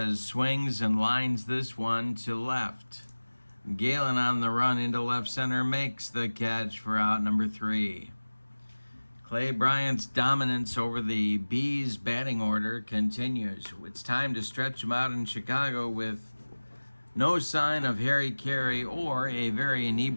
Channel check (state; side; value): inverted; both; correlation -1.00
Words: swings and lines this one to left. Galen on the run into left center makes the catch for out number 3. Clay Bryant's dominance over the Bees batting order continues. It's time to stretch him out in Chicago with no sign of Harry Carey or a very